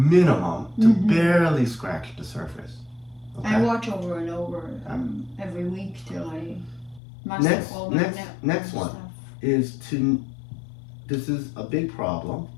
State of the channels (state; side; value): drops out; right; at 7.0 s